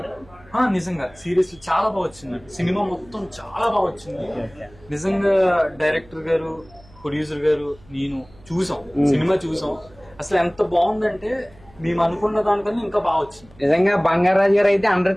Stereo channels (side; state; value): right; noise; hum, 26 dB below the sound